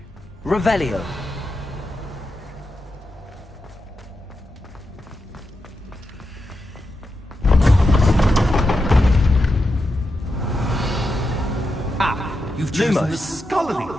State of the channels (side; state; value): both; normal; correlation 0.87